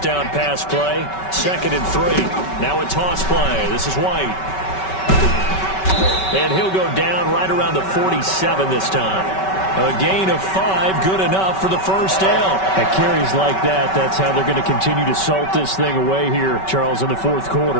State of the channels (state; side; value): late; right; 5.3 ms